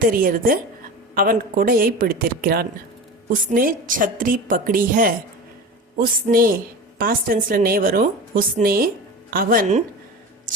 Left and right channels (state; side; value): normal; both; correlation 0.30